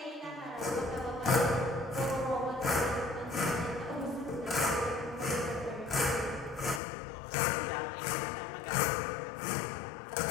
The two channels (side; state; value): right; drops out; at 6.8 s